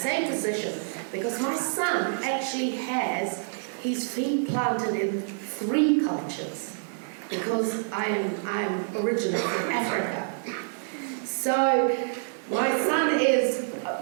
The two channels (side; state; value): left; silent; 60 dB below the other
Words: position, because my son actually has his feet planted in 3 cultures, because I'm originally from Africa. So my son is,